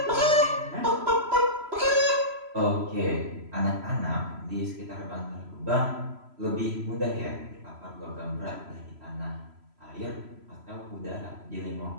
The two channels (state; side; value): late; left; 3.0 ms